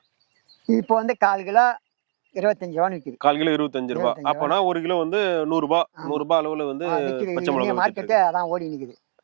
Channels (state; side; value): silent; left; digital silence